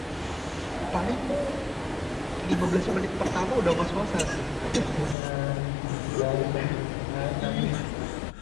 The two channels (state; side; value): drops out; right; at 5.2 s